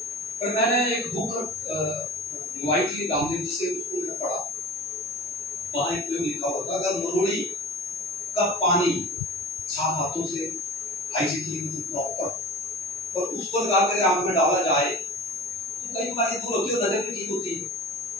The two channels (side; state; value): both; normal; correlation 0.36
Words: पर मैंने एक बुक मंगवाई थी रामदेव जी से, उसको मैंने पढ़ा, वहाँ एक प्रयोग लिखा हुआ था, अगर मरोड़ी का पानी साफ हाथों से हाइजीनिक प्रॉपर और उसको लगा कर आंख में डाला जाए तो कई बीमारी दूर होती है और नजर भी ठीक होती है।